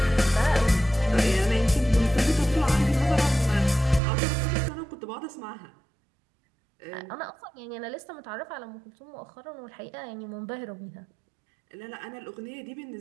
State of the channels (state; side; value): drops out; left; at 4.0 s